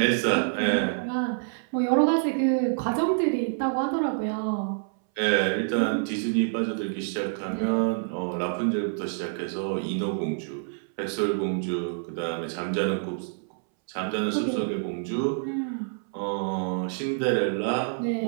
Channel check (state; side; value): silent; left; 60 dB below the other